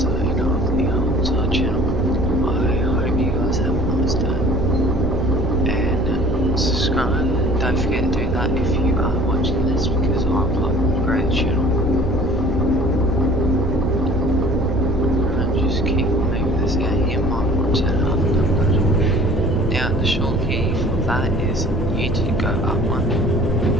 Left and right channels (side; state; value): both; normal; correlation 0.48